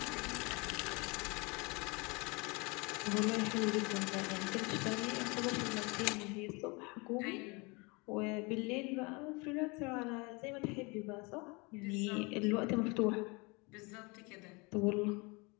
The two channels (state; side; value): quieter; right; 28.1 dB